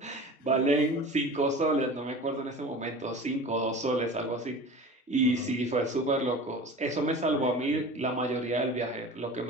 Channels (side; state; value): both; normal; correlation 0.37